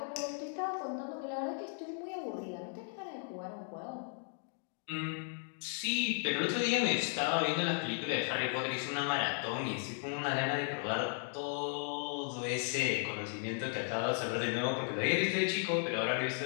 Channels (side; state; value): right; silent; 54 dB below the other